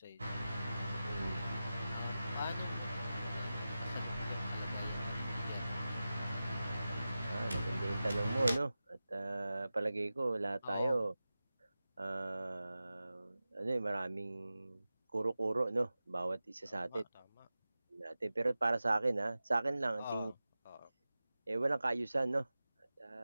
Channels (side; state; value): both; inverted; correlation -0.94